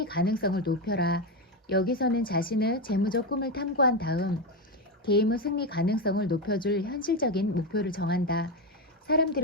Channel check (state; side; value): normal; both; correlation 0.11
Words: 가능성을 높여라. 여기서는 자신의 재무적 꿈을 탐구한 다음 게임의 승리 가능성을 높여줄 현실적인 목표를 정한다.